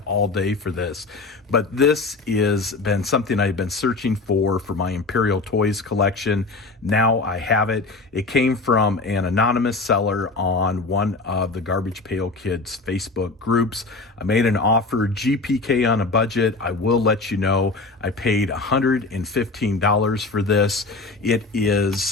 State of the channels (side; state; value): right; quieter; 3.7 dB